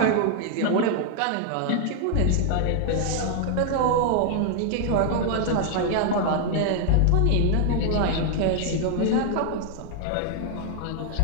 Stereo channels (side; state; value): both; different; correlation 0.00